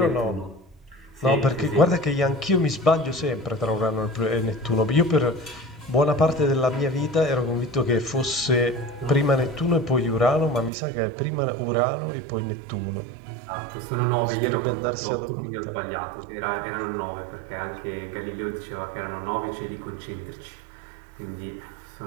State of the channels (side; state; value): left; drops out; at 10.7 s